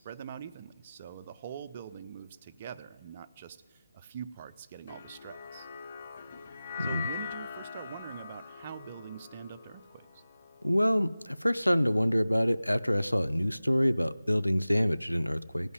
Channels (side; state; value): both; inverted; correlation -0.97